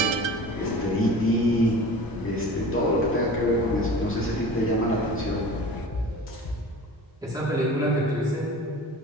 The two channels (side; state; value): both; normal; correlation 0.39